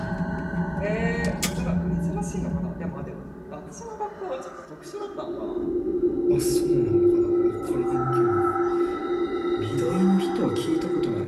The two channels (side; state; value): both; identical; correlation 1.00